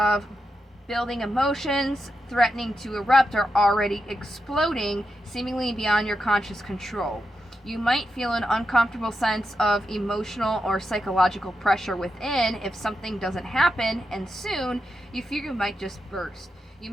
building emotions, threatening to erupt or already exploding, seemingly beyond your conscious control. You might feel an uncomfortable sense of emotional or psychological pressure within if something doesn't happen, and soon you fear you might just burst. You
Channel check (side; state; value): both; normal; correlation 0.86